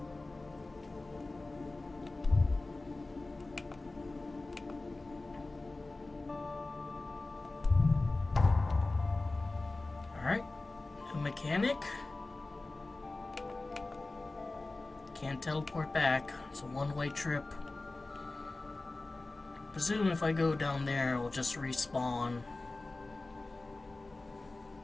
Alright, new mechanic. Can't teleport back. It's a one-way trip. Presume if I go down there, it'll just respawn.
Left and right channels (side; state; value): right; quieter; 3.2 dB